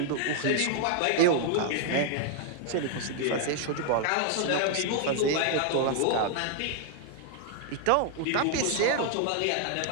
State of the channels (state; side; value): different; both; correlation 0.00